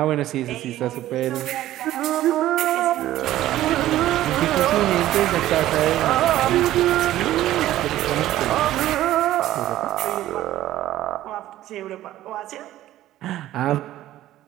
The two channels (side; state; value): left; quieter; 14.1 dB